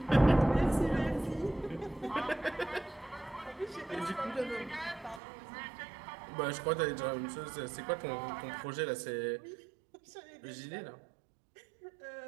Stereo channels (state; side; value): drops out; left; at 5.2 s